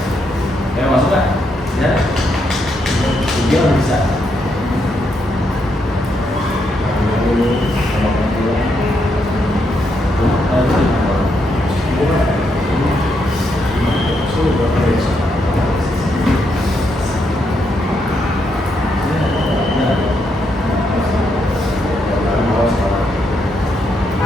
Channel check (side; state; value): both; normal; correlation 0.79